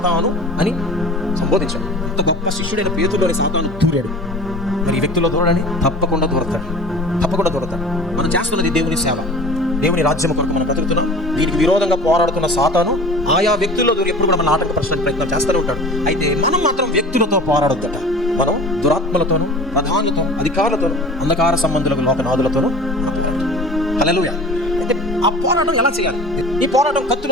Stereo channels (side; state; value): both; normal; correlation 0.40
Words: అని సంబోధించాడు. అంత గొప్ప శిష్యుడైన పేతురులోని సాతాను దూరాడు. మరి ఈ వ్యక్తుల్లో దూరడని తప్పకుండా దూరతాడు. మనం చేస్తున్నది దేవుని సేవ, దేవుని రాజ్యం కొరకు మనం బ్రతుకుతున్నాం. దీనికి విరోధంగా పోరాడుతున్న సాతాను ఆయా వ్యక్తుల్లో దూరి ఎప్పుడు కూడా మన ఆటంకపరచడానికి ప్రయత్నం చేస్తూనే ఉంటాడు. అయితే మనం మాత్రం వ్యక్తులతో పోరాడొద్దట. మనం దురాత్మలతోనూ, ప్రధానులతో, అధికారులతోనూ, అంధకార సంబంధులకు, లోకనాథులతోనూ హల్లెలూయా. అయితే ఆ పోరాటం ఎలా చేయాలి? ఈ పోరాటం